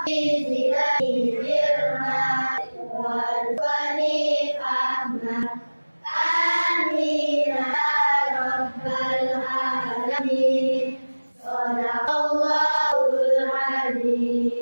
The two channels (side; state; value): both; inverted; correlation -1.00